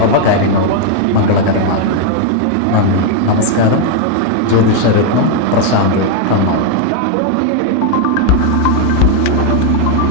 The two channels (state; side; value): different; both; correlation 0.01